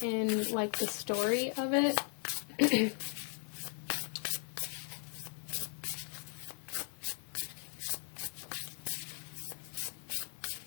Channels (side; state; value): right; silent; 53 dB below the other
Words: in like the story of it.